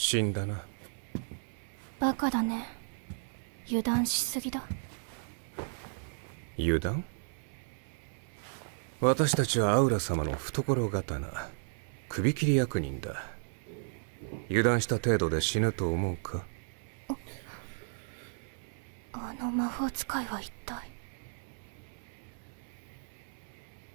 んだな。バカだね。油断しすぎだ。油断？私たちはアウラ様の懐刀、首切り役人だ。油断した程度で死ぬと思うか？あの魔法使いは一体。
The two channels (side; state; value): left; silent; 55 dB below the other